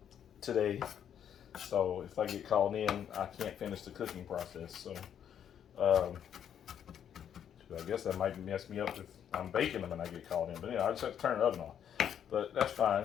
today, so if I get called in, I can't finish the cooking process. So I guess that might mess me up if I'm baking them and I get called in. But I just have to turn the oven off. But that's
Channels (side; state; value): right; quieter; 9.1 dB